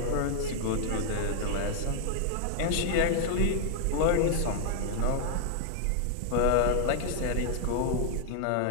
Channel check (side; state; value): both; different; correlation 0.00